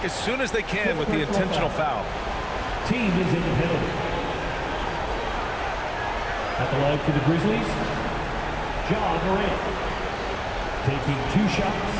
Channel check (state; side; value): identical; both; correlation 1.00